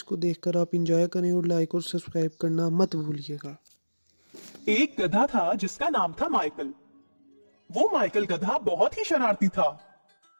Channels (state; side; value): inverted; both; correlation -1.00